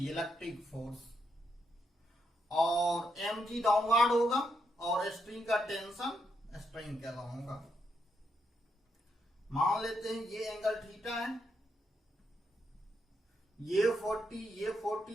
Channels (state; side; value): normal; both; correlation 0.79